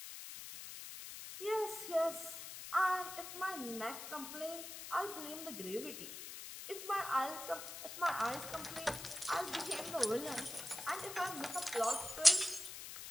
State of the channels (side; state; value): left; noise; hiss, 9 dB below the sound